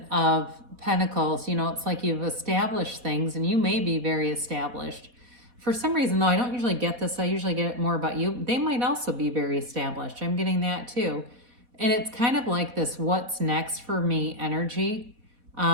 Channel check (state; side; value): late; left; 4.1 ms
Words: of Pentacles, you know, it's like you've established things and you may be very established. For some reason, though, I don't usually get this. I usually get it more about you. They might also be very established. I'm getting that too. And it's kind of like this what's next for me energy.